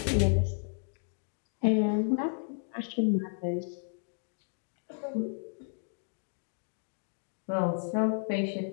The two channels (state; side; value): silent; right; digital silence